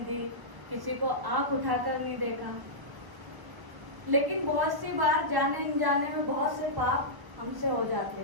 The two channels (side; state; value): left; late; 1.3 ms